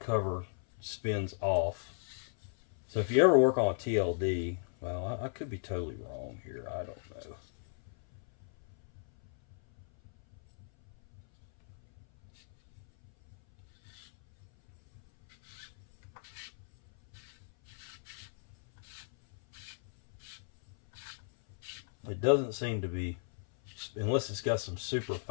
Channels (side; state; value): right; silent; 54 dB below the other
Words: spins off. So if you ever work on a TLD, well, I could be totally wrong here. I don't know. It doesn't seem to be, unless it's got some super